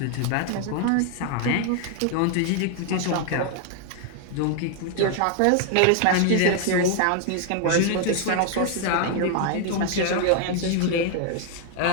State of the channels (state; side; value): different; both; correlation 0.00